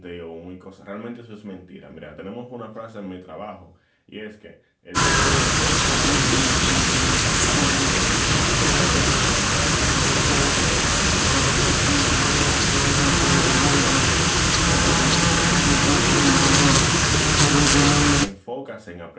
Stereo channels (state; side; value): identical; both; correlation 1.00